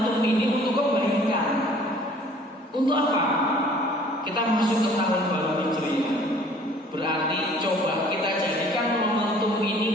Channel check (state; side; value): normal; both; correlation 0.53